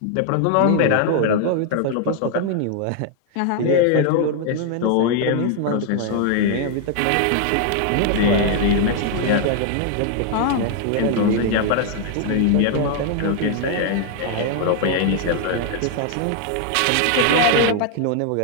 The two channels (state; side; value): different; both; correlation 0.00